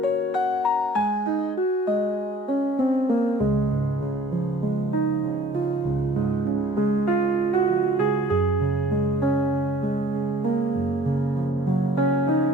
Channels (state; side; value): normal; both; correlation 0.52